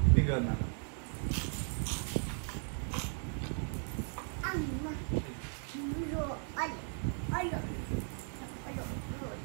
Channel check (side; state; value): left; silent; 53 dB below the other